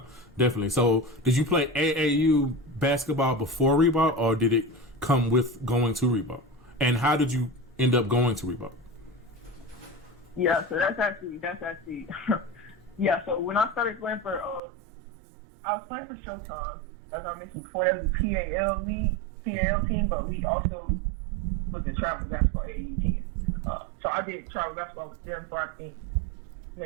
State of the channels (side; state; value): left; drops out; at 14.6 s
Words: Definitely. So, did you play AAU basketball before Ribault, or did it come with going to Ribault? And how did you end up going to Ribault? Yeah, so that's actually yeah. So when I started playing I was playing for Showtime, as I mentioned before. That was a PAL team, but we also was a travel basketball AAU team. So I did travel basketball with them for I think